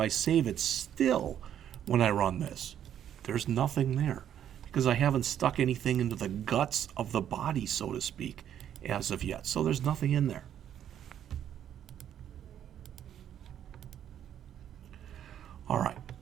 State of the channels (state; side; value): quieter; left; 10.1 dB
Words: save it still when I run this, there's nothing there because I haven't stuck anything into the guts of the body, so to speak, as of yet. So there's nothing in there. All right.